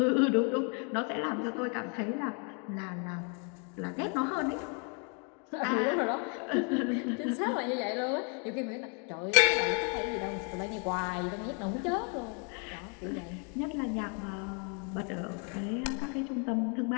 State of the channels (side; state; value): right; quieter; 37.9 dB